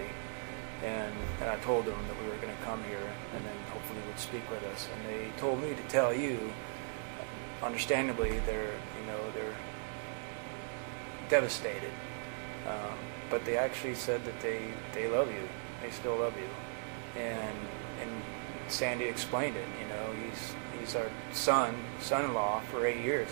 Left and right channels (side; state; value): left; silent; 53 dB below the other